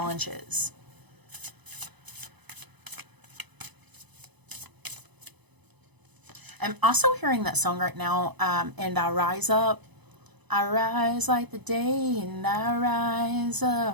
I'm also hearing that song right now, and I rise up. I rise like the day, and I rise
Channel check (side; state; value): left; late; 0.99 ms